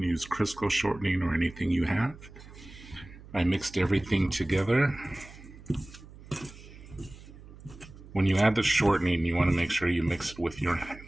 use Crisco shortening or anything you have. I mixed everything together. When you add the shortening, you want to make sure you mix it with your hand.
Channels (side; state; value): right; noise; hum, 18 dB below the sound